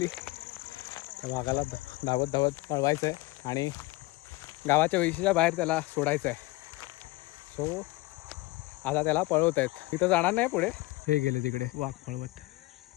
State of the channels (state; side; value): quieter; right; 21.2 dB